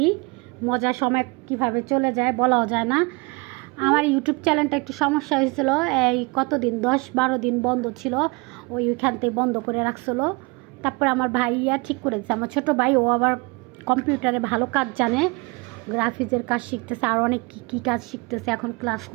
মজার সময় কিভাবে চলে যায় বলাও যায় না। আমার ইউটিউব চ্যানেলটা একটু সমস্যা হয়েছিল। এই কতদিন 10-12 দিন বন্ধ ছিল, ওইখান থেকে বন্ধ করে রাখছিল। তারপরে আমার ভাইয়া ঠিক করে দিচ্ছে। আমার ছোটো ভাই, ও আবার কম্পিউটারে ভালো কাজ জানে, গ্রাফিক্সের কাজ শিখতেছে, আর অনেক কী কাজ শিখতেছে, এখন ক্লাস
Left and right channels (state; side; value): quieter; left; 27.6 dB